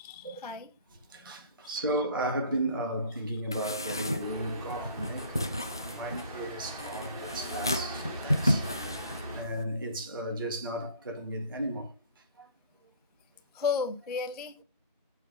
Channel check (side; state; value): both; inverted; correlation -0.49